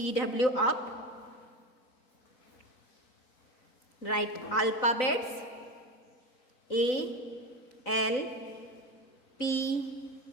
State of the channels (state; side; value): late; right; 3.9 ms